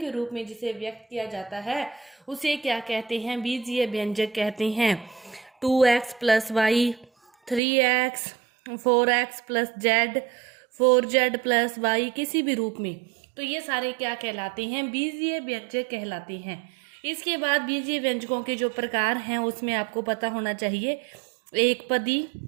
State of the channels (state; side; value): drops out; left; at 7.6 s